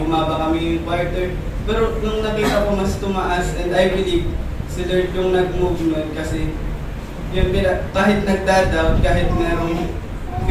bumaba kami yung quarter. Pero nung nakita ko mas tumaas and I believe si Lord yung nag-move nun kasi yun, kahit nagda-doubt, kahit merong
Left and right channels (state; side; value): identical; both; correlation 1.00